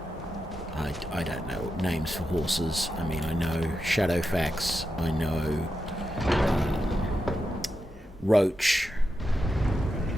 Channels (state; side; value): normal; both; correlation 0.88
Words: I don't know names for horses. I mean, I know Shadowfax, I know Roach.